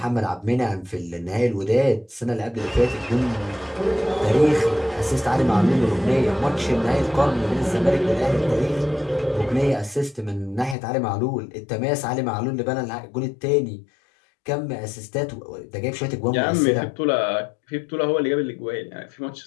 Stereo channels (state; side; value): drops out; right; at 10.8 s